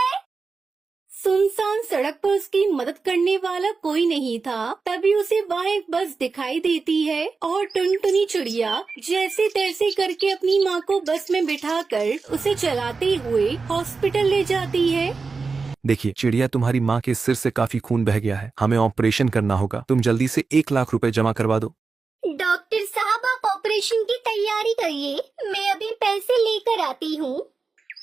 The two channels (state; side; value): quieter; left; 4.5 dB